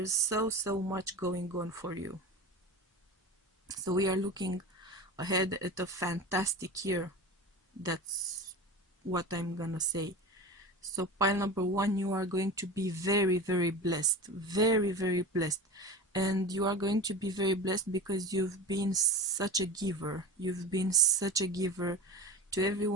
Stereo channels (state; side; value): normal; both; correlation 0.30